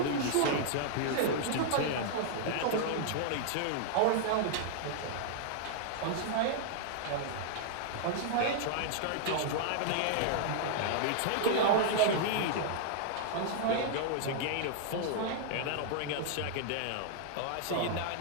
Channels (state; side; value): different; both; correlation -0.01